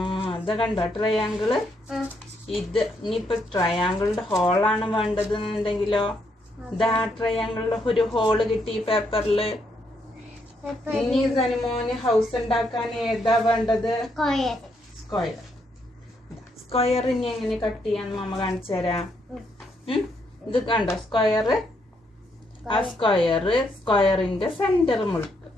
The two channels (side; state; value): both; normal; correlation 0.76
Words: അത് കണ്ടോ ട്രയാങ്കിള്? ഇത് ഇനിയിപ്പൊ ട്രയാങ്കിളിന്റെ ഹോളാണ് വേണ്ടത് എന്നുണ്ടെങ്കിലോ, ഇതാ ട്രയാങ്കിളിന്റെ ഒരു ഹോള് കിട്ടി പേപ്പറില്. ഇനി സനിമോന് ഹൗസ് ഉണ്ടാക്കാൻ ഏതാ വേണ്ടത്? സ്ക്വയർ. സ്ക്വയർ ഇനി എങ്ങനെ കട്ട് ചെയ്യാന്ന് മമ്മ കാണിച്ചു തരാം. ഇത് കണ്ടോ സ്ക്വയർ? ആ സ്ക്വയറിന്റെ സെന്റർ